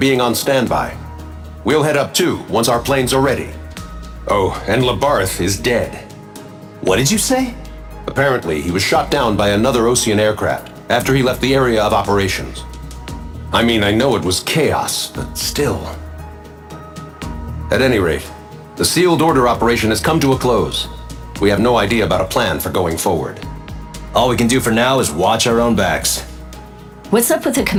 on standby. We'll head up too, once our planes are ready. Oh, and Labarth is dead. What did you say? Apparently, he was shot down by another Ocean aircraft after he left the area of operations. I mean, I know it was chaos, but still. At any rate, the sealed order operation has come to a close. We have no idea about a plan for going forward. All we can do for now is watch our own backs. What's up with the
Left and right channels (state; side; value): identical; both; correlation 1.00